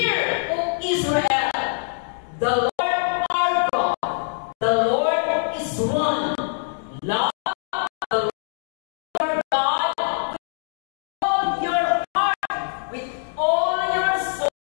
O Israel, the Lord our God, the Lord is one. Love the Lord God with all your heart, with all your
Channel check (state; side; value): silent; right; digital silence